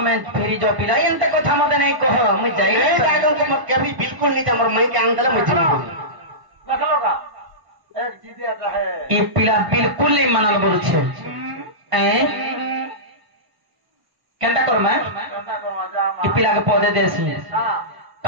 ফেরি যাও পিলা এনতে কথা মতে নেই কহ মুই যাই এই জায়গা को कभी बिल्कुल नहीं जा मोर माइके आन देला मुझे रख लो का एक जीदे आता है ই পিলা বিলকুল নেই মানাল বলছে কেনটা করমা कंदा कर मा जा ই পিলাকে পদে দেছি हां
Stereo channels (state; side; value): late; left; 1.1 ms